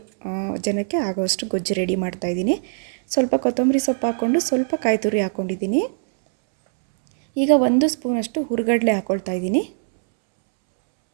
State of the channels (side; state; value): left; silent; 65 dB below the other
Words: ಜನಕ್ಕೆ ಆಗೋಷ್ಟು ಗೊಜ್ಜು ರೆಡಿ ಮಾಡ್ತಾಯಿದ್ದೀನಿ. ಸ್ವಲ್ಪ ಕೊತ್ತಂಬರಿ ಸೊಪ್ಪು ಹಾಕ್ಕೊಂಡು ಸ್ವಲ್ಪ ಕಾಯಿ ತುರಿ ಹಾಕ್ಕೊಂಡಿದ್ದೀನಿ. ಈಗ 1 ಸ್ಪೂನಷ್ಟು ಹುರ್ಗಡ್ಲೆ ಹಾಕ್ಕೊಳ್ತಾ ಇದ್ದೀನಿ.